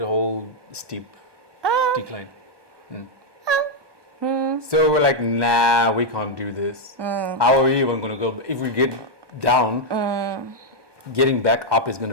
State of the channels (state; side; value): late; left; 1.2 ms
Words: steep decline. So we're like, nah, we can't do this. How are we even gonna go? If we get down, getting back up is